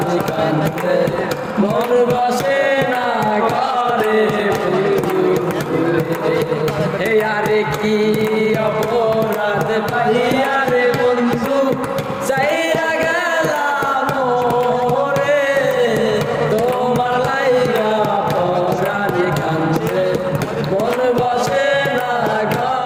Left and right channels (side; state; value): both; identical; correlation 1.00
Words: কান্দে মন বসে না ঘরে বন্ধু আরে কি অপরাধ পাইয়ারে বন্ধু চাইরা গেলাম রে তোমার লাইগা পরাণ কান্দে মন বসে না